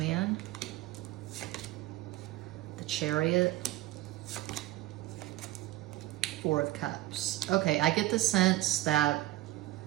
the Chariot, Four of Cups. Okay, I get the sense that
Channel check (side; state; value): left; quieter; 16.8 dB